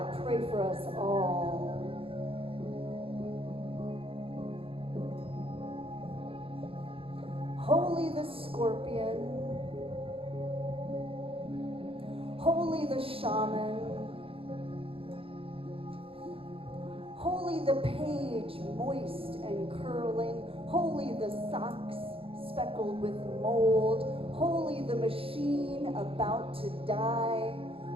pray for us all. Holy the scorpion, holy the shaman, holy the page moist and curling, holy the socks speckled with mold, holy the machine about to die,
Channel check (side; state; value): left; late; 0.27 ms